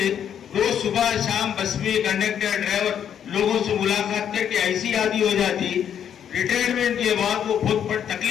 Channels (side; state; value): right; quieter; 9.0 dB